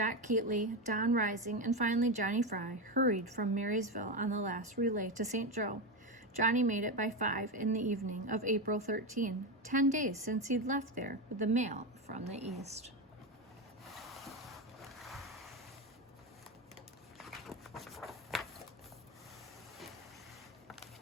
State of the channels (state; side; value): normal; both; correlation 0.14